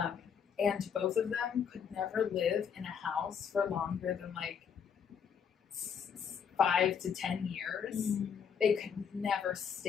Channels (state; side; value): quieter; right; 7.2 dB